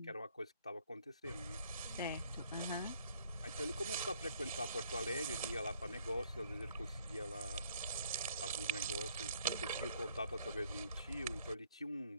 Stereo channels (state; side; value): inverted; both; correlation -0.64